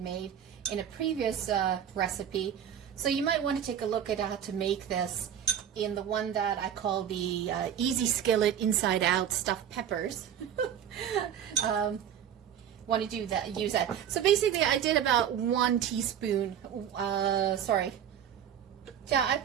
made in a previous recipe. So you might want to take a look at how to make this in the one that I call the easy skillet inside out stuffed peppers. Want to do that, use that. So basically I did about 1 teaspoon, yeah, I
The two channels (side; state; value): left; quieter; 9.3 dB